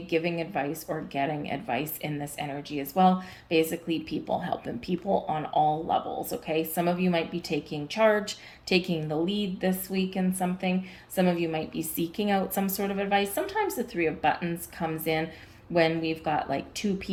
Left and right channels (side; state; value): both; identical; correlation 1.00